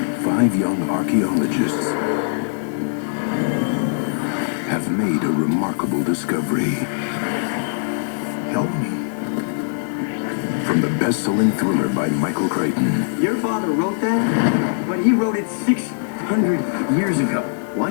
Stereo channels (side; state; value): right; silent; digital silence